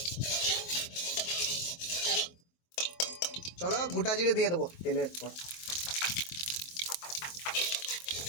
চলো গোটা জিরে দিয়ে দেবো তেলের পর।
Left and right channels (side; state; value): right; late; 23 ms